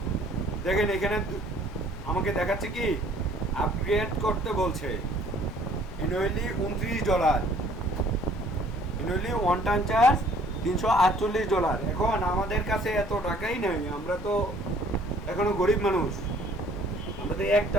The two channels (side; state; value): both; normal; correlation 0.57